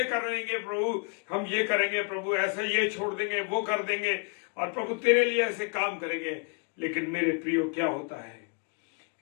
करेंगे, प्रभु हम ये करेंगे, प्रभु ऐसा ये छोड़ देंगे, वो कर देंगे, और प्रभु तेरे लिए ऐसे काम करेंगे। लेकिन मेरे प्रियो, क्या होता है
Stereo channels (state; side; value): quieter; right; 38.1 dB